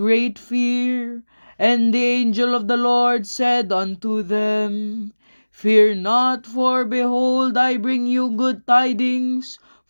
fear. And the angel of the Lord said unto them, Fear not, for behold, I bring you good tidings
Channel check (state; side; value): inverted; both; correlation -1.00